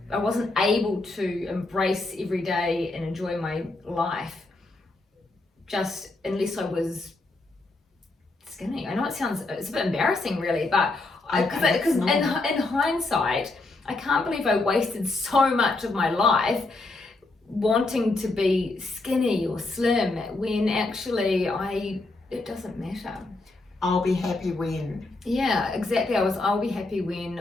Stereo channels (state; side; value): quieter; right; 3.2 dB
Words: wasn't able to embrace every day and enjoy my life just unless I was skinny. I know it's a bit embarrassing really, but because in hindsight, I can't believe I wasted so much of my life wanting to be skinny or slim when actually it doesn't matter. I'll be happy when. Yeah, exactly. I'll be happy